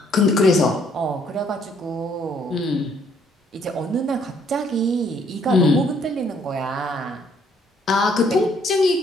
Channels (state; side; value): normal; both; correlation 0.66